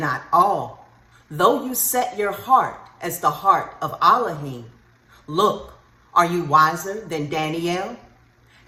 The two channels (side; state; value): both; identical; correlation 1.00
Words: all. Though you set your heart as the heart of Elohim, look, are you wiser than Daniel?